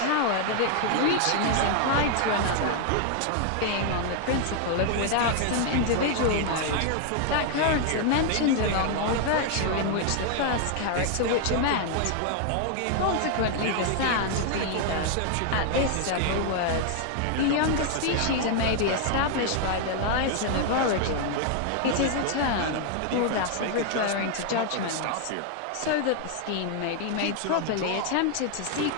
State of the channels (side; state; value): both; different; correlation 0.00